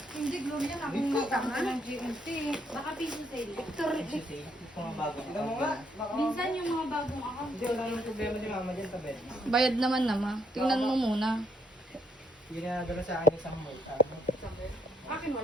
Hindi, Gloria na. Akong matanga ng GMT. Baka piso sale. Ito mga bago. Tignan mo nga. Minsan yung mga bagong account. Hindi, wala nang problema ni mama dyan sa bed. Bayad naman nama. Tingnan mo muna. Yung nadala sa akin isang mall. Akin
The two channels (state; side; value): normal; both; correlation 0.72